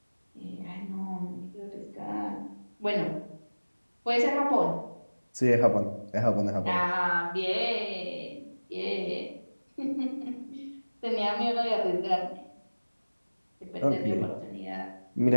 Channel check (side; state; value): both; inverted; correlation -1.00